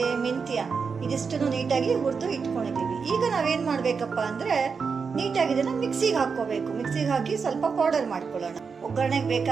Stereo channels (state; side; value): quieter; left; 5.5 dB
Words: ಮೆಂತ್ಯ ಇದಿಷ್ಟನ್ನು ನೀಟಾಗಿ ಹುರಿದು ಇಟ್ಕೊಂಡಿದ್ದೀವಿ. ಈಗ ನಾವೇನು ಮಾಡಬೇಕಪ್ಪ ಅಂದರೆ ನೀಟಾಗಿ ಇದನ್ನು ಮಿಕ್ಸಿಗೆ ಹಾಕ್ಕೋಬೇಕು. ಮಿಕ್ಸಿಗೆ ಹಾಕಿ ಸ್ವಲ್ಪ ಪೌಡರ್ ಮಾಡ್ಕೊಳ್ಳೋಣ. ಒಗ್ಗರಣೆಗೆ